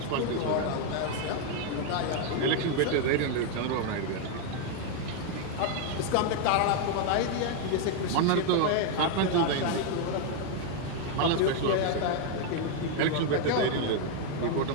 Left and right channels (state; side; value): different; both; correlation 0.00